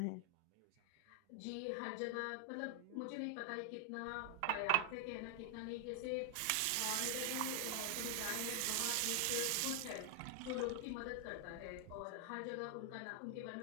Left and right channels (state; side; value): different; both; correlation 0.00